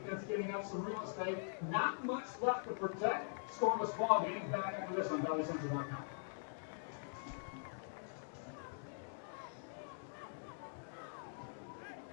giving up some real estate. Not much left to protect. Scoreless ball game. Back after this on ValleyCentral.com.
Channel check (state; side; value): silent; right; digital silence